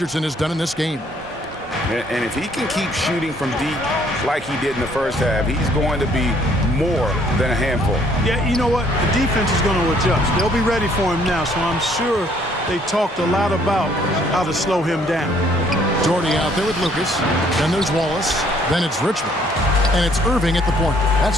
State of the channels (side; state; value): both; normal; correlation 0.63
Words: has done in this game. And if he can keep shooting from deep like he did in the first half, he's going to be more than a handful. Yeah, you know what? The defense is going to adjust. They'll be ready for him now, so I'm sure they talked a lot about how to slow him down. Doherty out there with Lucas. Then there's Wallace. Then it's Richmond. And it's Irving at the point.